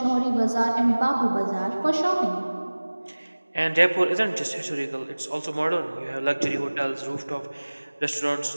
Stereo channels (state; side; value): inverted; both; correlation -1.00